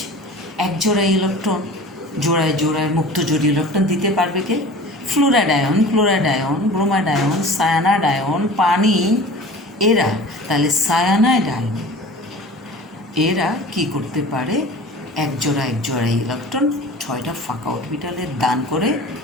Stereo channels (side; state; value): both; normal; correlation 0.40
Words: এক জোড়া ইলেকট্রন, জোড়ায় জোড়ায় মুক্ত জোড় ইলেকট্রন দিতে পারবে কে? Fluoride ion, bromide ion, cyanide ion, পানি, এরা। তাহলে সায়ানাইড আয়ন এরা কি করতে পারে? এক জোড়া ইলেকট্রন 6টা ফাঁকা অরবিটালের দান করে